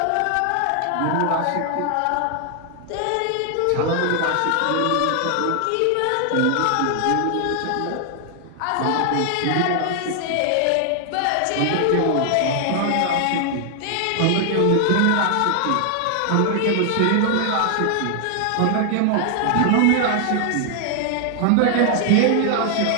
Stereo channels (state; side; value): different; both; correlation 0.00